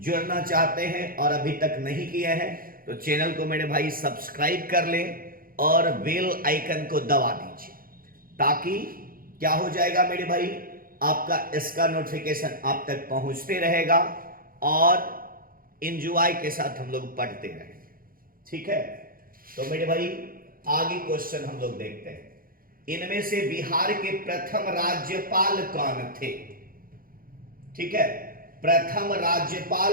चाहते हैं और अभी तक नहीं किए हैं तो चैनल को मेरे भाई सब्सक्राइब कर लें और बेल आइकन को दबा दीजिए, ताकि क्या हो जाएगा मेरे भाई, आपका इसका नोटिफिकेशन आप तक पहुंचते रहेगा और एंजॉय के साथ हम लोग पढ़ते रहेंगे। ठीक है, तो मेरे भाई आगे क्वेश्चन हम लोग देखते हैं। इनमें से बिहार के प्रथम राज्यपाल कौन थे? ठीक है, प्रथम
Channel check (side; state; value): left; late; 0.42 ms